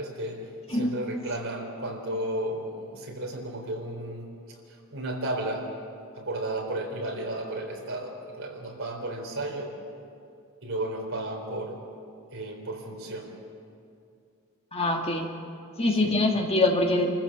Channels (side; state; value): both; normal; correlation 0.26